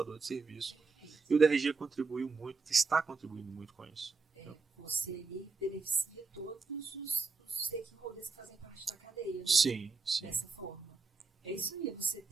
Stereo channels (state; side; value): quieter; left; 4.5 dB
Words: de serviço. Perfeito. E o DRG contribuiu muito, está contribuindo muito com isso. Você ali beneficia todos os stakeholders que fazem parte da cadeia, né? Sim. Dessa forma. É isso aí, você